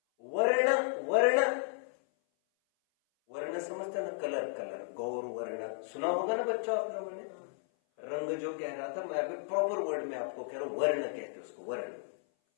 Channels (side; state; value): right; silent; 55 dB below the other